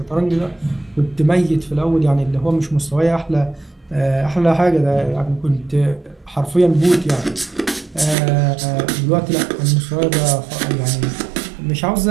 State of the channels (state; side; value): drops out; left; at 8.2 s